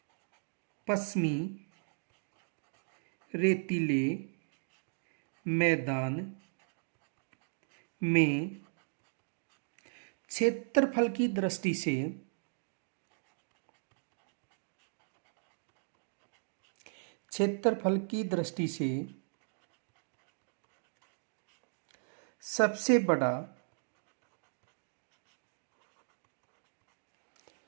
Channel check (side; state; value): left; silent; digital silence